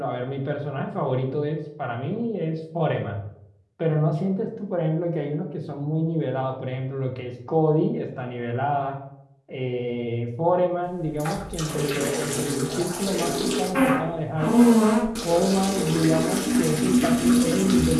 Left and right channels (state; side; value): identical; both; correlation 1.00